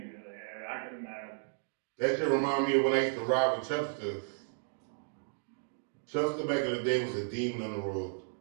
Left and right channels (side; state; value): left; silent; digital silence